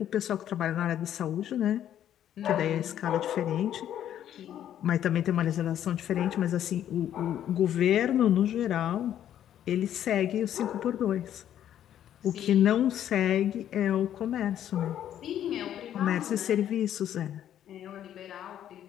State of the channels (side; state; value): right; quieter; 10.7 dB